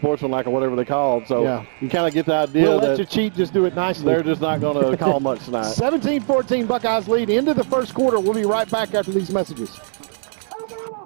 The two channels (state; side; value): silent; left; digital silence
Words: or whatever they call it. So you kind of get the idea we'll that let you cheat, just do it nicely. They're just not going to call much tonight. 17-14 Buckeyes lead into the first quarter. We'll be right back after these messages.